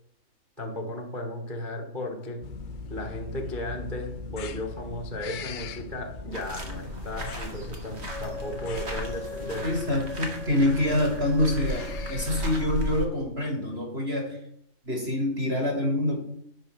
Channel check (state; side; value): late; left; 3.0 ms